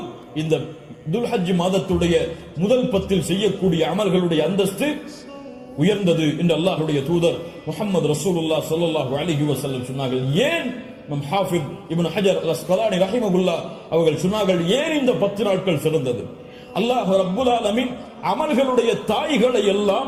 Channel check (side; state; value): both; identical; correlation 1.00